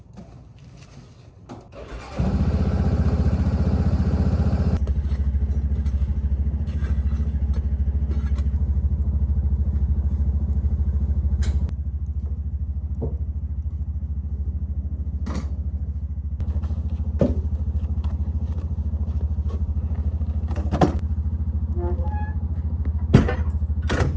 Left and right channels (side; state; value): both; identical; correlation 1.00